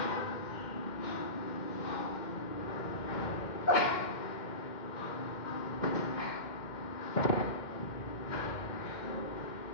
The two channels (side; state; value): right; late; 2.1 ms